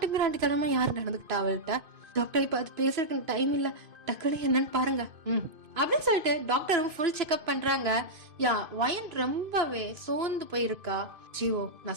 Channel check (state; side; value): late; left; 2.5 ms